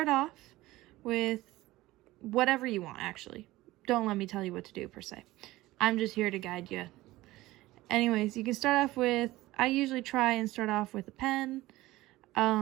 off with whatever you want, actually. Don't let me tell you what to do per se. I'm just here to guide you. Anyways, you can start off with, I usually try and start off with a pen,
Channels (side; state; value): left; quieter; 17.9 dB